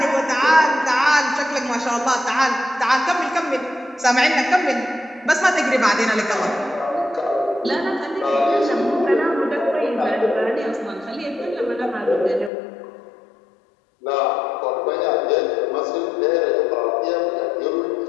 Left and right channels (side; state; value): right; drops out; at 12.5 s